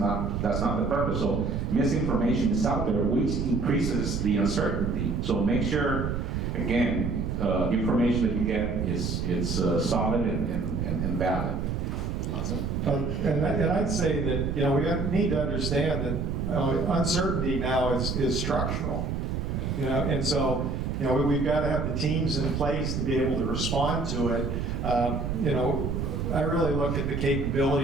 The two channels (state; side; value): noise; right; rumble, 2 dB below the sound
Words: purpose. So misinformation is out there, which increases the uncertainty. So make sure, again, information that you get is solid and valid. Awesome. And I'd say that, we need to understand that uncertainty now is structural. And so, we've got to have the teams in place to be able to respond to it. I really look at the